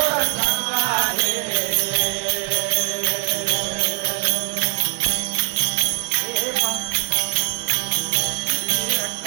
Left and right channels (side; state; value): left; quieter; 32.7 dB